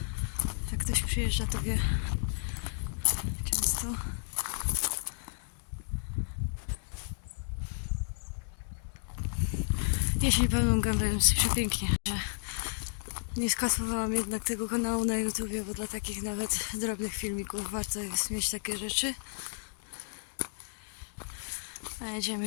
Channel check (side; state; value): right; silent; digital silence